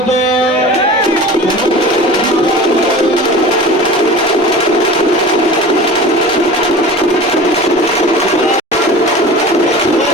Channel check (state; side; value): normal; both; correlation 0.36